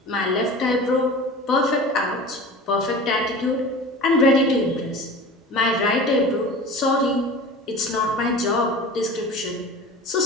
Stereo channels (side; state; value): both; normal; correlation 0.36